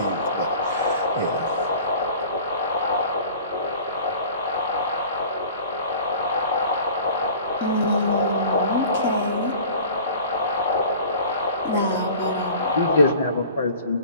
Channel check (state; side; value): inverted; both; correlation -0.44